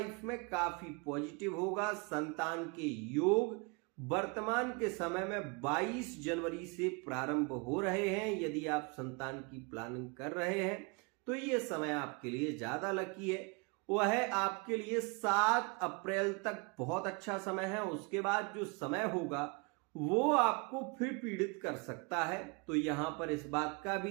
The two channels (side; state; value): left; quieter; 31.1 dB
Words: में काफी पॉजिटिव होगा। संतान के योग वर्तमान के समय में 22 जनवरी से प्रारंभ हो रहे हैं। यदि आप संतान की प्लानिंग कर रहे हैं तो ये समय आपके लिए ज्यादा लकी है। वह आपके लिए 7 अप्रैल तक बहुत अच्छा समय है। उसके बाद जो समय होगा वो आपको फिर पीड़ित कर सकता है। तो यहां पर इस बात का